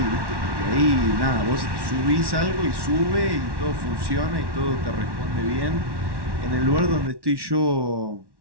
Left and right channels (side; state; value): left; late; 1.1 ms